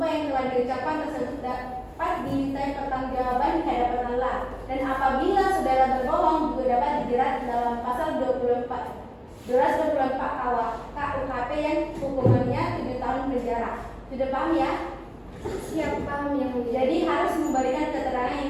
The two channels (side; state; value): both; identical; correlation 1.00